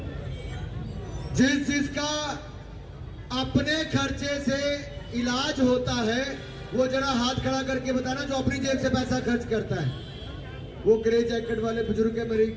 जिसका अपने खर्चे से इलाज होता है वो जरा हाथ खड़ा करके बताना जो अपनी जेब से पैसा खर्च करता है। वो ग्रे जैकेट वाले बुजुर्ग है, मेरी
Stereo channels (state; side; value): identical; both; correlation 1.00